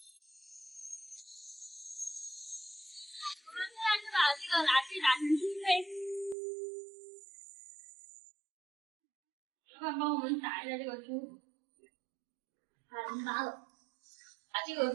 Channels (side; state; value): left; drops out; at 6.4 s